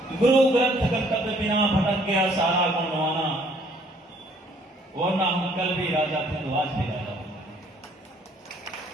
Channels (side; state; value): both; normal; correlation 0.62